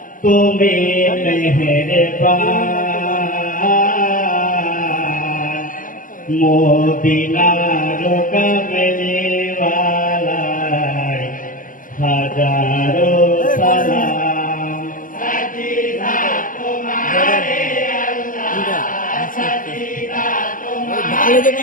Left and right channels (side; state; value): right; late; 0.39 ms